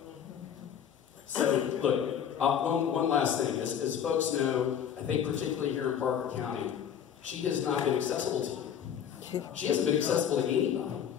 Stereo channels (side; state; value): right; quieter; 8.7 dB